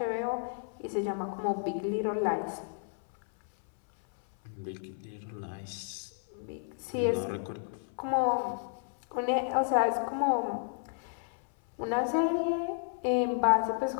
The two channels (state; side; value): silent; right; 57 dB below the other